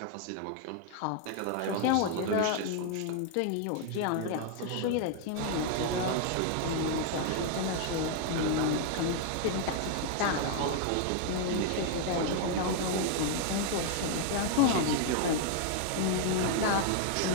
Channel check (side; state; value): both; different; correlation 0.00